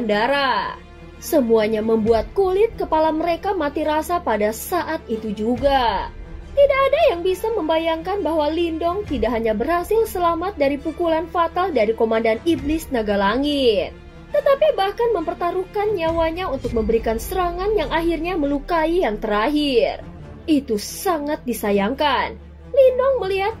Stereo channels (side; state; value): both; identical; correlation 1.00